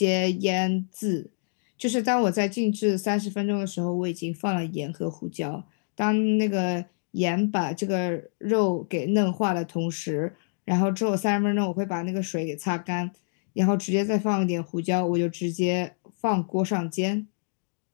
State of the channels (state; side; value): silent; right; digital silence